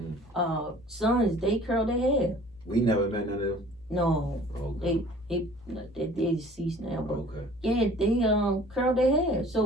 sons, they curled their hair. We never met none of them. No, okay. they deceased now, but okay. Yeah, they curled their hair.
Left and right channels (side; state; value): left; noise; hum, 27 dB below the sound